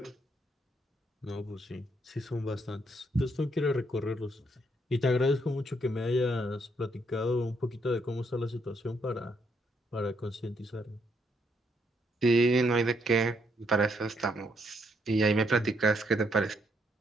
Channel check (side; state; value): both; normal; correlation 0.74